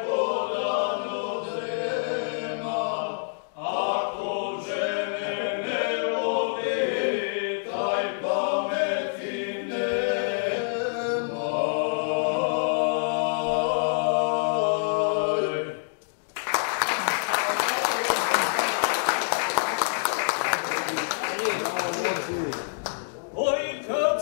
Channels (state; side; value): silent; right; digital silence